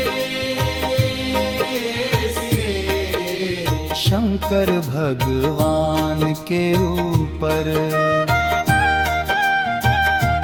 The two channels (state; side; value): noise; right; rumble, 23 dB below the sound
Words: शंकर भगवान के ऊपर।